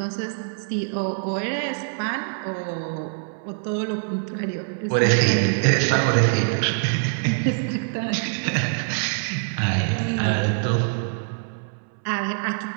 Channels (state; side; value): silent; left; 62 dB below the other